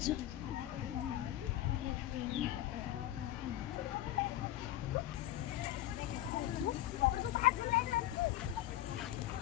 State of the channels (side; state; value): right; quieter; 13.9 dB